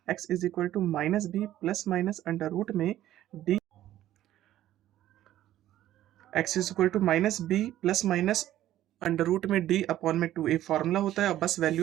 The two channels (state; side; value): quieter; left; 13.3 dB